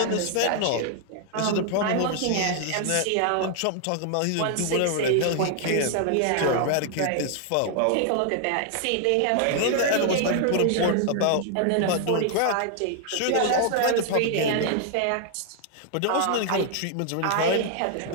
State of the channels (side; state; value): both; different; correlation 0.00